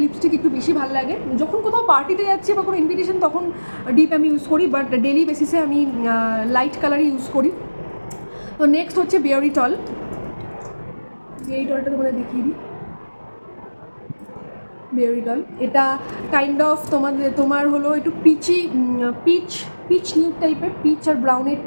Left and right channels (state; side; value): inverted; both; correlation -1.00